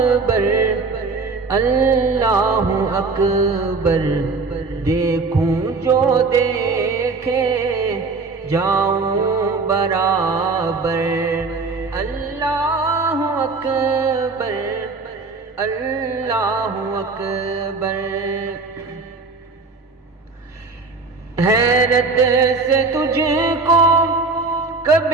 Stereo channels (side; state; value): left; quieter; 4.1 dB